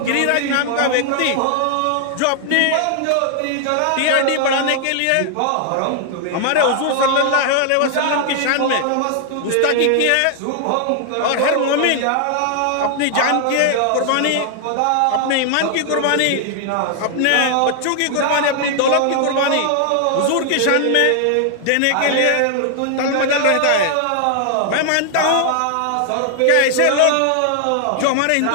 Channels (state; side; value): different; both; correlation 0.00